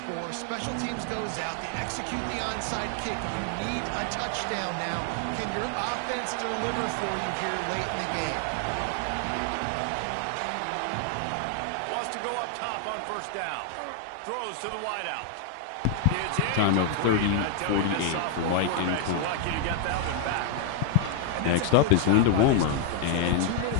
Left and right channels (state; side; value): different; both; correlation 0.00